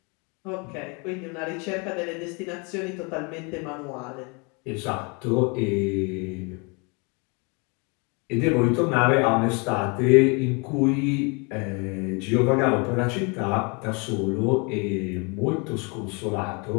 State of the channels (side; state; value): right; quieter; 31.9 dB